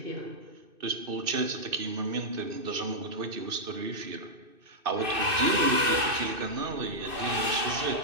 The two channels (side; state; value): left; late; 2.6 ms